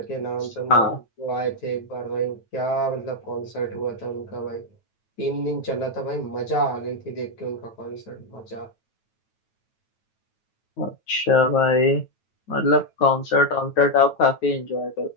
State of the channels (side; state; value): right; late; 9.1 ms